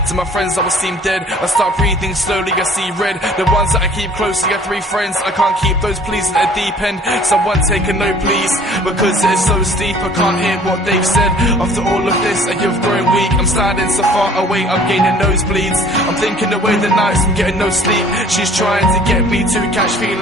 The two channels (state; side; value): normal; both; correlation 0.52